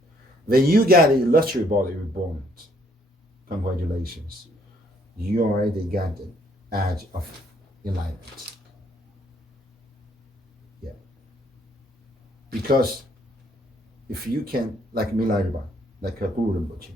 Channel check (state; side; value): normal; both; correlation 0.66